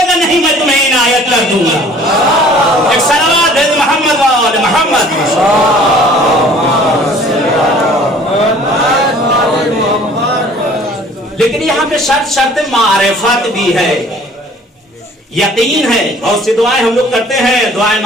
گا نہیں میں تمہیں عنایت کر دوں گا۔ ایک صلوات ہے محمد والے محمد۔ لیکن یہاں پہ شرط معرفت بھی ہے، یقین ہے۔ بہت سی دعائیں ہم لوگ کرتے ہیں، دعائیں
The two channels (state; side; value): normal; both; correlation 0.52